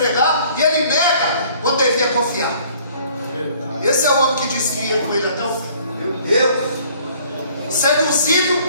e ele nega quando devia confiar. Esse é o homem que disse que ia com ele até o fim. Eu, seduzido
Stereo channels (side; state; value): both; inverted; correlation -0.57